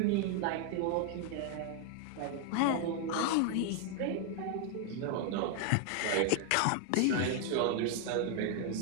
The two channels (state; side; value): different; both; correlation 0.00